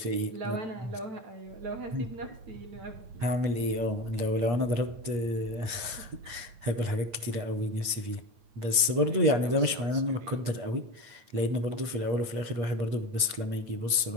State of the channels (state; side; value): late; left; 8.5 ms